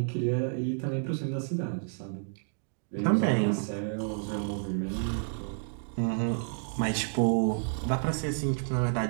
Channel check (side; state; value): left; silent; digital silence